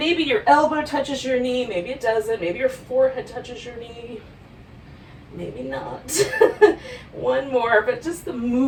your elbow touches your knee, maybe it doesn't, maybe your forehead touches your knee, maybe not. One more, but just the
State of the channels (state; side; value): identical; both; correlation 1.00